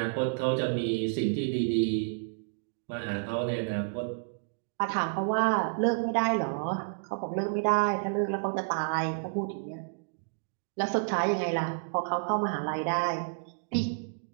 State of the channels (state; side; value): silent; left; digital silence